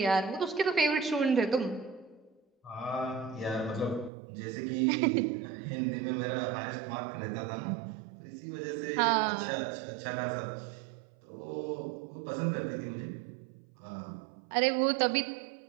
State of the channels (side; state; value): left; drops out; at 4.1 s